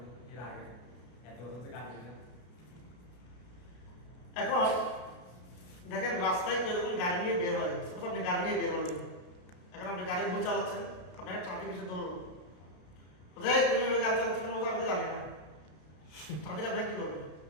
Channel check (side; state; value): right; late; 33 ms